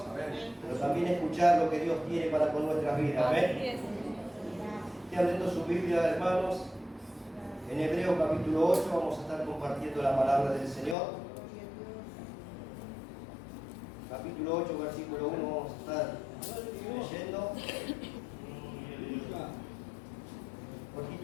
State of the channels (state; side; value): drops out; right; at 11.0 s